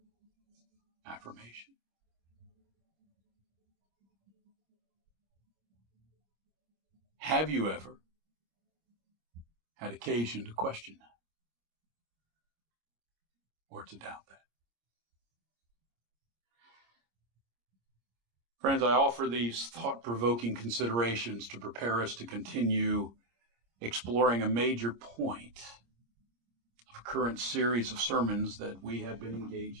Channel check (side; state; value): left; late; 26 ms